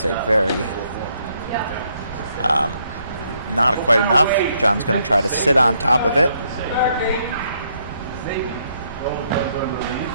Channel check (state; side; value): inverted; both; correlation -0.73